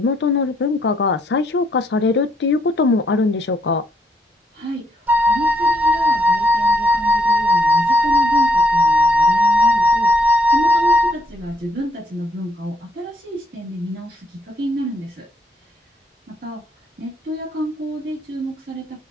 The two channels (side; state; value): both; normal; correlation 0.73